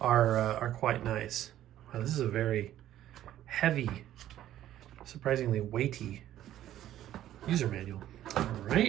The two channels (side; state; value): left; quieter; 12.6 dB